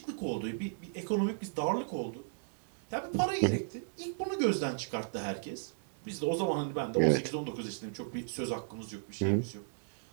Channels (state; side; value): silent; left; digital silence